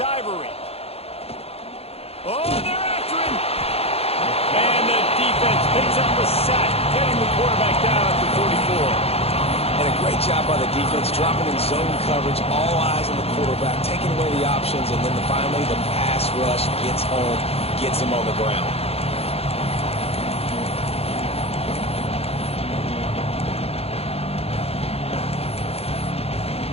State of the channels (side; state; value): right; late; 0.29 ms